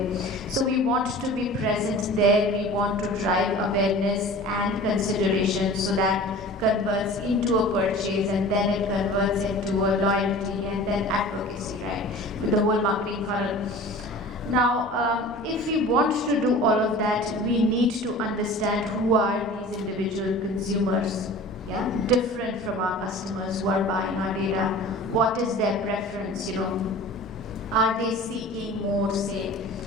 So we want to be present there, we want to drive awareness and consideration so that converts into a purchase, and then it converts into a loyalty and then advocacy, right? With the whole marketing funnel. Now, if we want to do all of that, we need to understand who are these individual consumers. Yeah, different from our customers who are buying our data. What is their preference? Are they seeking more, say,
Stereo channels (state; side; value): normal; both; correlation 0.40